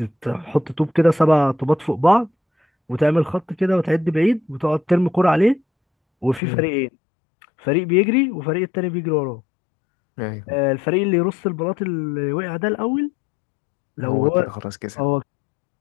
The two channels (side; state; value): right; drops out; at 6.4 s